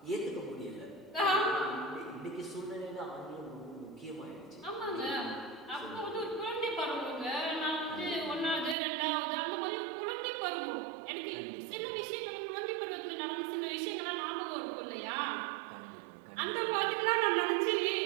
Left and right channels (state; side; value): drops out; left; at 8.8 s